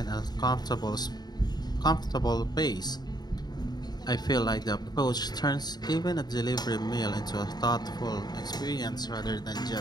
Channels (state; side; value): late; right; 0.20 ms